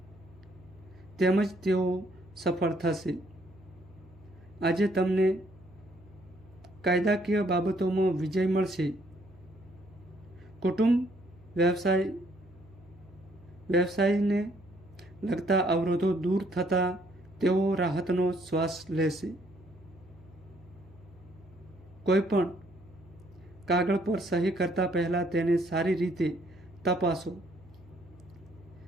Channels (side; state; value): right; noise; hum, 25 dB below the sound